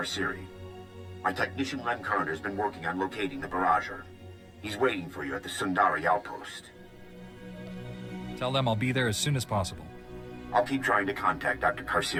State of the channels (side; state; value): both; identical; correlation 1.00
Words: My technician Len Carter's been working on locating the Barrager. He's waiting for you at the Sundari outpost. Tell them I'll be there as soon as possible. I'll keep trying to contact Dr.